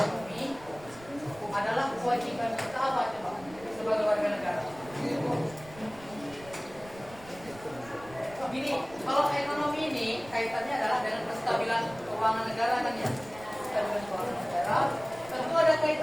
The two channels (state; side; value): noise; right; rumble, 20 dB below the sound